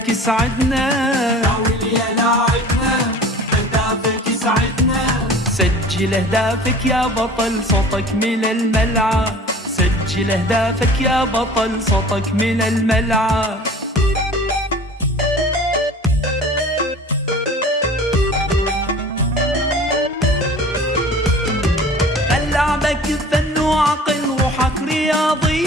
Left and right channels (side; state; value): both; normal; correlation 0.43